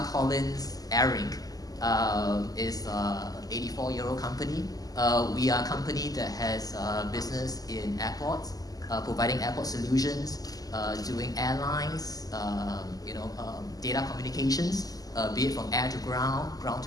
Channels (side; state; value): right; late; 0.18 ms